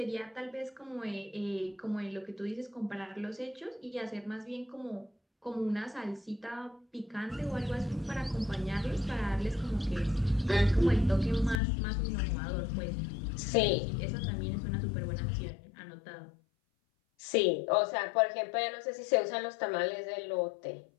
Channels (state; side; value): drops out; right; at 11.6 s